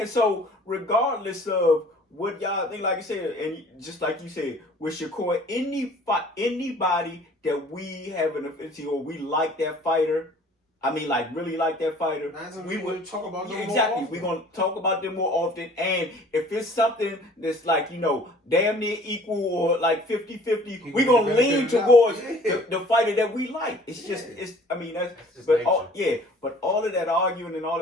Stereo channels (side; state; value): both; normal; correlation 0.51